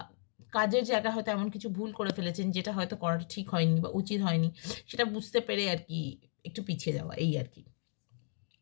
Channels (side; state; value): right; silent; 55 dB below the other